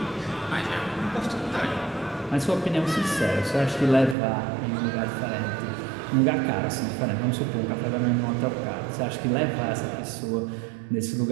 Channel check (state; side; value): drops out; left; at 4.2 s